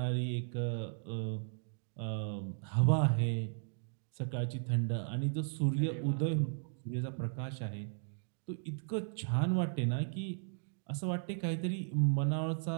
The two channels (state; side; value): silent; left; digital silence